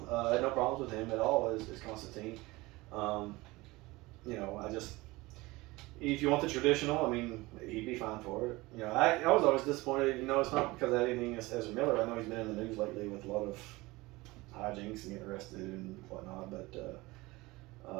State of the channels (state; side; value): quieter; left; 21.3 dB